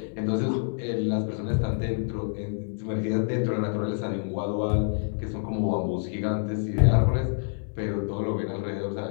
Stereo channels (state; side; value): silent; right; digital silence